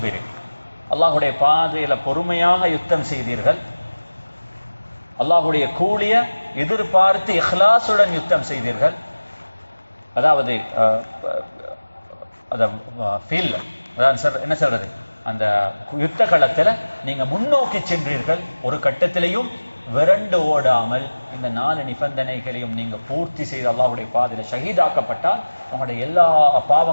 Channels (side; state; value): both; inverted; correlation -1.00